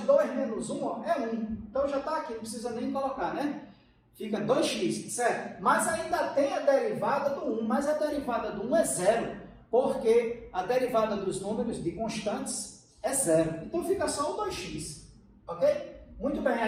2 menos 1, ó, é 1. Então já está aqui, não precisa nem colocar, né? Fica 2x, certo? Mas ainda tem a derivada do 1, mas a derivada do 1 é 0, porque a derivada dos números de constantes é 0. Então fica só o 2x, ok? Muito bem,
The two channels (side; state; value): both; identical; correlation 1.00